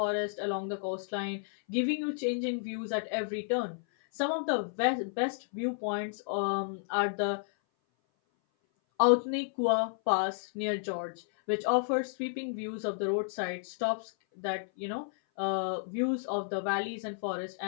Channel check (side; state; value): right; silent; 56 dB below the other